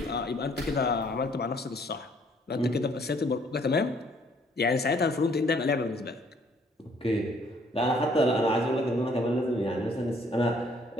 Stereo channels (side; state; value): both; normal; correlation 0.63